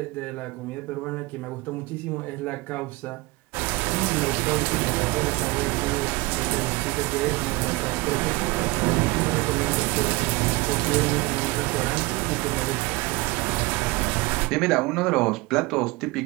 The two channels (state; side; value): quieter; left; 22.6 dB